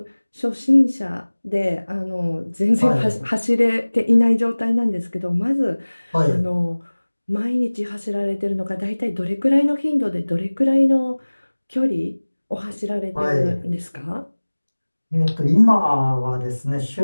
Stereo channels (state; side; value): inverted; both; correlation -1.00